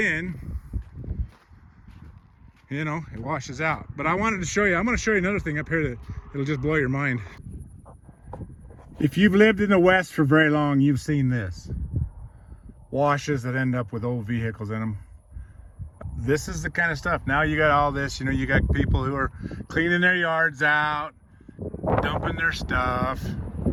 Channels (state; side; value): identical; both; correlation 1.00